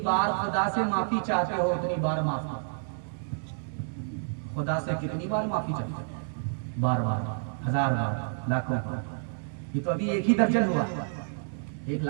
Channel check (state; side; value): silent; left; digital silence